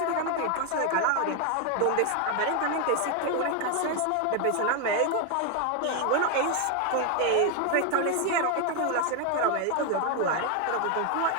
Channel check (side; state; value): both; different; correlation 0.01